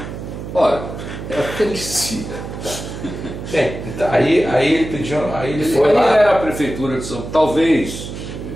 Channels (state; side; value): noise; right; hum, 9 dB below the sound